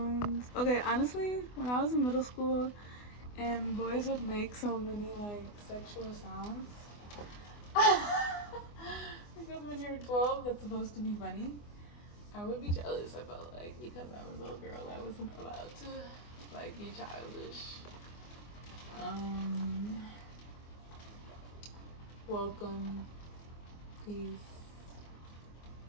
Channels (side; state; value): right; late; 24 ms